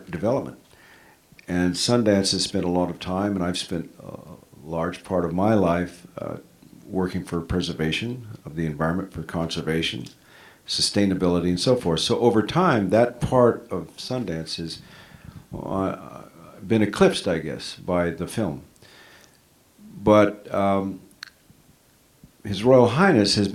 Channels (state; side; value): identical; both; correlation 1.00